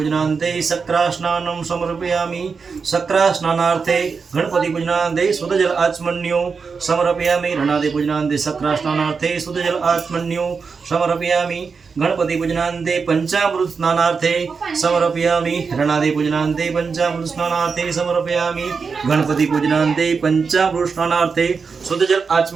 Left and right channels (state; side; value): quieter; left; 5.2 dB